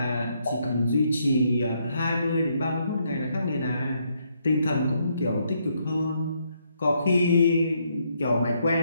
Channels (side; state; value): both; inverted; correlation -0.74